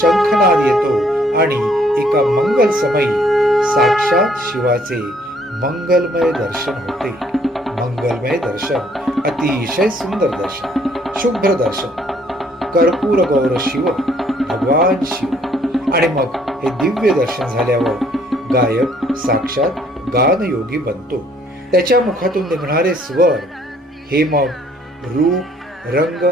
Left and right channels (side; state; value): both; normal; correlation 0.64